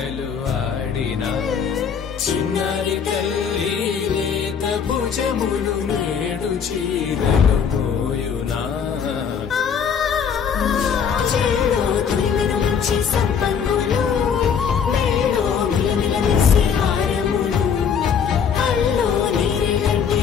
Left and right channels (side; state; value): right; quieter; 7.0 dB